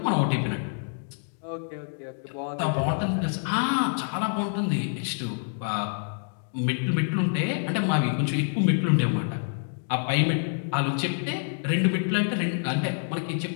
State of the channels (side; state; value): right; silent; digital silence